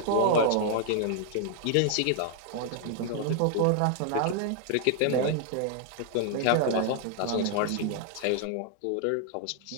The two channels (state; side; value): different; both; correlation 0.00